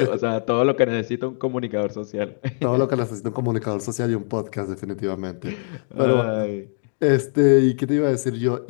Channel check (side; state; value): right; silent; 61 dB below the other